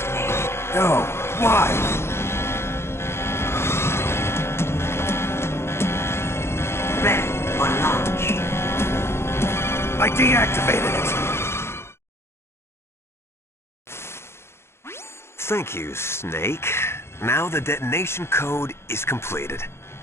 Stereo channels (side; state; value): right; late; 0.12 ms